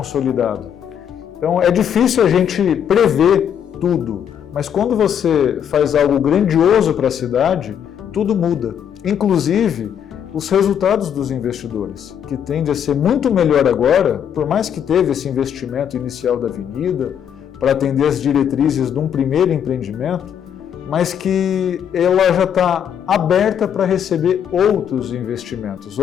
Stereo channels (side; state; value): right; quieter; 8.8 dB